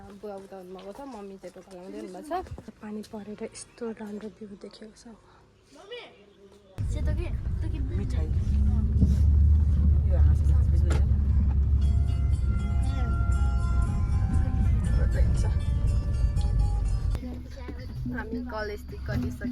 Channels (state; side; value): identical; both; correlation 1.00